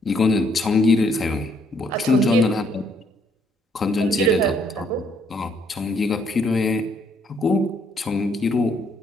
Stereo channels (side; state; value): both; normal; correlation 0.69